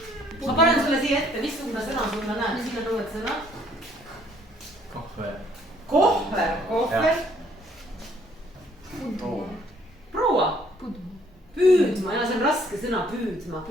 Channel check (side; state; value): both; normal; correlation 0.63